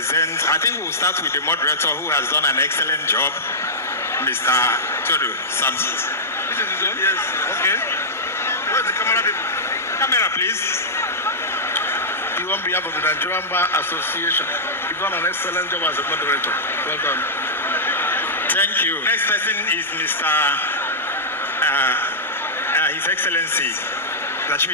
I think we'll start with the moderator who has done an excellent job, Mr. Toru Samson. This is his own? Yes. Okay. Where's the camera? Camera, please. You on behalf of the Nigerian Bar Association, you've done an excellent job as a moderator. Well done. Thank you. Next person is Mr. His Excellency,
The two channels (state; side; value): normal; both; correlation -0.12